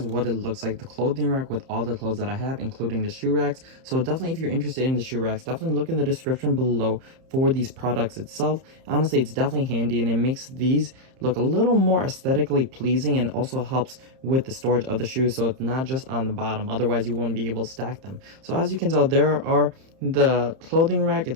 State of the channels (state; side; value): late; left; 30 ms